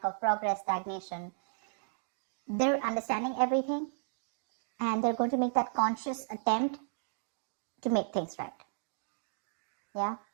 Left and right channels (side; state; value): left; silent; digital silence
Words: of progress, stagnation. They're understanding everything and they're going to make that conscious attempt to make things right. Yeah.